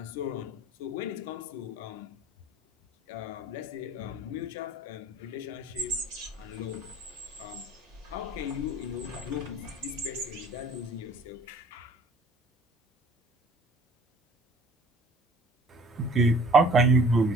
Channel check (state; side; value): normal; both; correlation 0.51